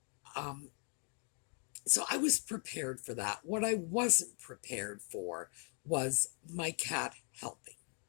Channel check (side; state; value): right; quieter; 39.9 dB